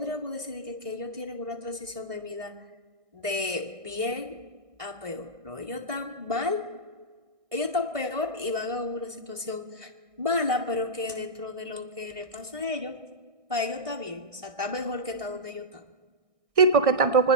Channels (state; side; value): late; left; 1.6 ms